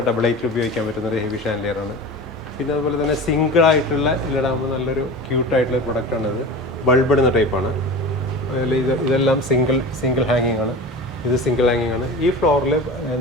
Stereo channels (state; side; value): normal; both; correlation 0.33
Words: ഡബിൾ ഹൈറ്റിൽ ഉപയോഗിക്കാൻ പറ്റുന്ന ഒരു ഹെവി ഷാൻലിയറാണ്. പിന്നെ അതുപോലെ തന്നെ സിംഗിൾ ആയിട്ടുള്ള ഇതിലിടാകുമ്പോൾ നല്ലൊരു ക്യൂട്ടായിട്ടുള്ള ഒരു പ്രൊഡക്റ്റാണ്. ഇത് ബൾബ് ഇടുന്ന ടൈപ്പാണ്. അതിൽ ഇതെല്ലാം സിംഗിൾ ഹാങ്ങിങ് ആണ്. ഇത് സിംഗിൾ ഹാങ്ങിങ് ആണ്. ഈ ഫ്ലോറിൽ